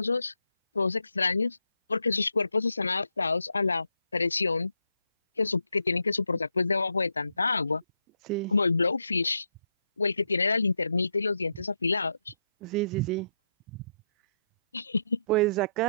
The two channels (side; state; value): both; inverted; correlation -0.78